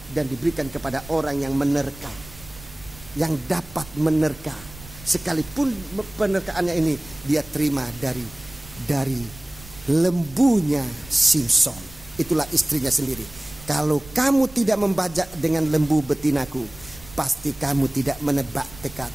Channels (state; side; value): noise; right; rumble, 19 dB below the sound